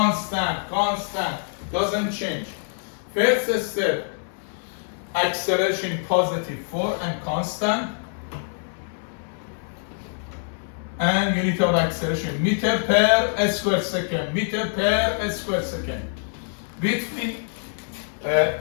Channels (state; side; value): silent; right; 62 dB below the other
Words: constant, doesn't change. First step, acceleration positive 4 and constant. And unit of acceleration, meter per square second, meter per square second. Between